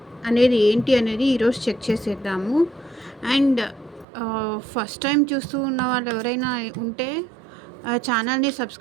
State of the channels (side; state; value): left; drops out; at 4.0 s